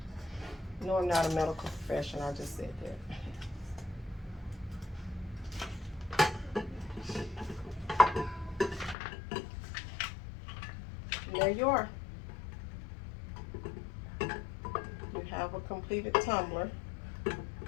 No, I'm not a medical professional, I just said that. there you are. You have a completed tumbler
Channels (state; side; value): drops out; right; at 9.0 s